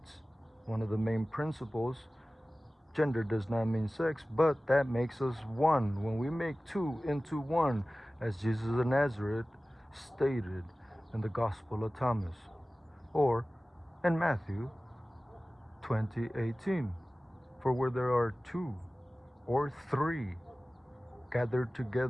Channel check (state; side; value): normal; both; correlation 0.97